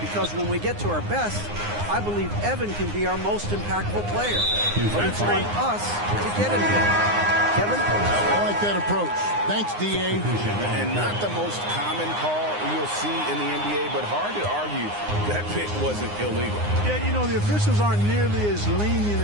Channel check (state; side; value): late; left; 9.7 ms